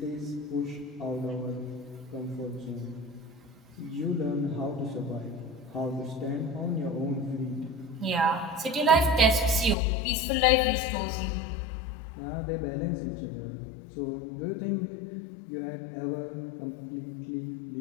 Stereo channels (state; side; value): drops out; right; at 9.8 s